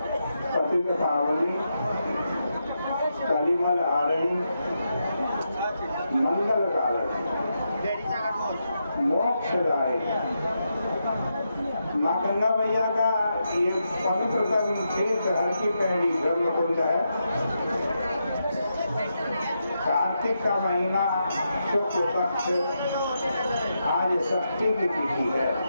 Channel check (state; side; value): inverted; both; correlation -0.84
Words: पतित पावनी कलिमल हारणी मंगल कारक मोक्षदायी माँ गंगा मैया का ये पवित्रतम तीर्थ हर की पैड़ी ब्रह्मकुंड है। कार्तिक का महीना शुक्ल पक्ष आज षष्ठी की तिथि है।